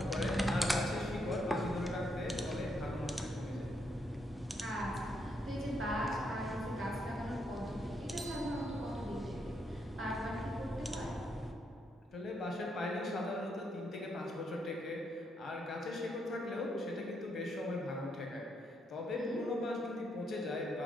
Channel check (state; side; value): normal; both; correlation 0.77